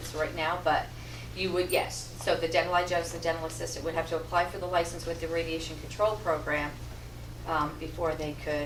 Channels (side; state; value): both; identical; correlation 1.00